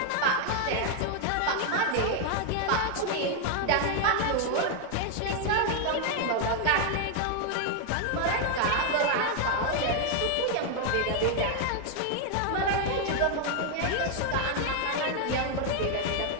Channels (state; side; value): different; both; correlation 0.01